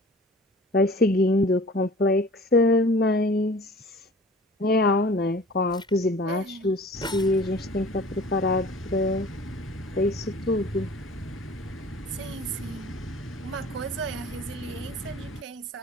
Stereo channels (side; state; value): both; normal; correlation 0.45